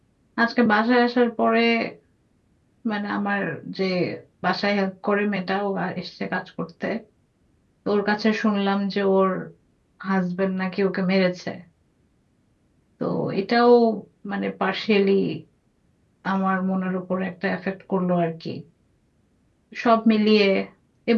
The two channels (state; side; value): identical; both; correlation 1.00